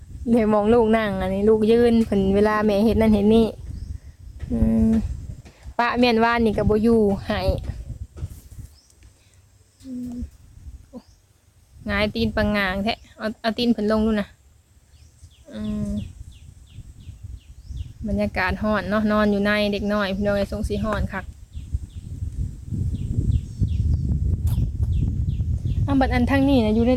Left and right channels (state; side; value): identical; both; correlation 1.00